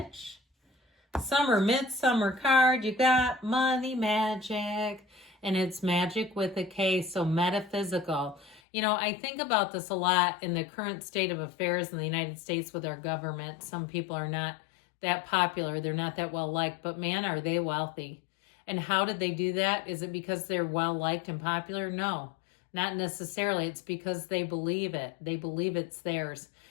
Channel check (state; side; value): drops out; right; at 8.6 s